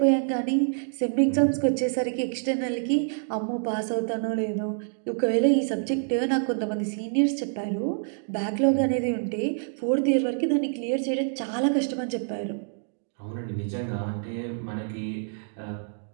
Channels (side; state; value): left; silent; digital silence